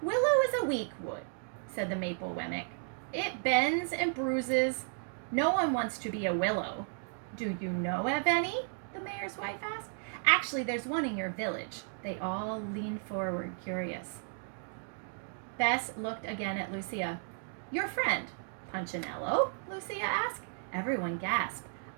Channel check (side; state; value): left; silent; 55 dB below the other